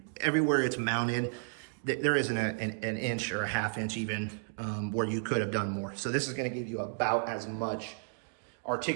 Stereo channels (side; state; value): left; silent; digital silence